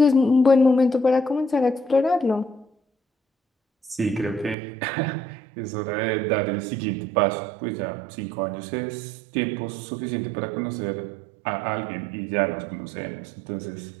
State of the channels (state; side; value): drops out; left; at 4.5 s